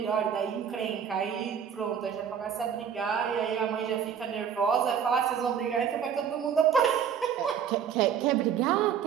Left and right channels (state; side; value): quieter; left; 8.0 dB